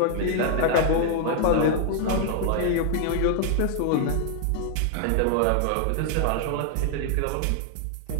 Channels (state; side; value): different; both; correlation 0.00